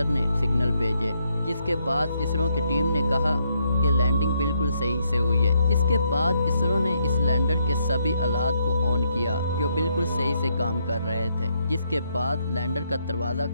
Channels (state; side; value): inverted; both; correlation -0.76